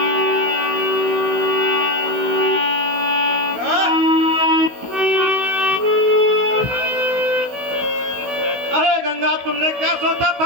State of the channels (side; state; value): left; late; 16 ms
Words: अरे गंगा, तुमने क्या सोचा था